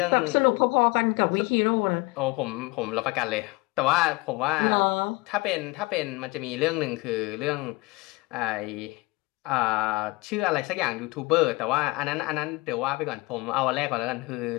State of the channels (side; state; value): right; quieter; 24.5 dB